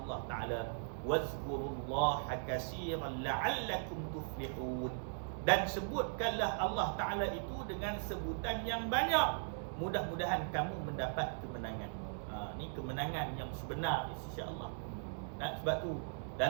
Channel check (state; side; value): silent; left; 52 dB below the other